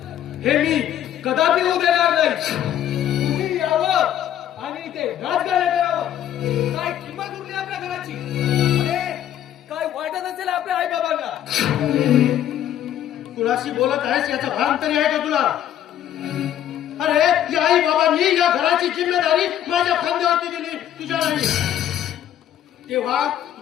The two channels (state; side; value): quieter; right; 11.1 dB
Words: हे मी कदापि होऊ देणार नाही. तुम्ही यावं आणि इथे राजकारण करावं. काय किंमत उरली आपल्या घराची? अरे काय वाटत असेल आपल्या आई बाबांना? कुणाशी बोलत आहेस याचा भान तरी आहे का तुला? अरे या आई बाबांनी या घराची जिम्मेदारी माझ्या खांद्यावरती दिली, तुझ्या नाही. तेव्हा